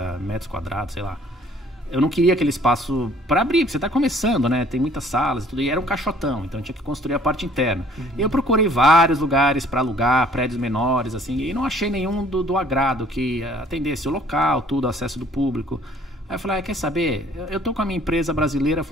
metros quadrados, sei lá. Eu não queria aquele espaço para abrir, porque você está começando, né? Tem muitas salas e tudo, e era um caixotão, então eu tinha que construir a parte interna. Eu procurei vários lugares para alugar, prédios menores, assim, e não achei nenhum do agrado que atendesse o local, tudo, acesso do público. Aí eu falei, quer saber? Eu tô com a minha empresa brasileira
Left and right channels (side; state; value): both; normal; correlation 0.56